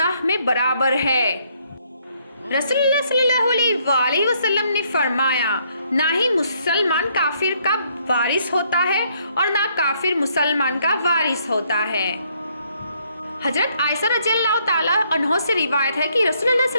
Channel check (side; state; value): both; inverted; correlation -0.70